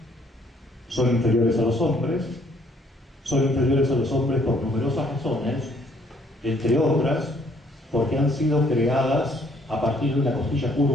son inferiores a los hombres por numerosas razones, entre otras, porque han sido creadas a partir de una costilla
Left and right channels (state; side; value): normal; both; correlation 0.64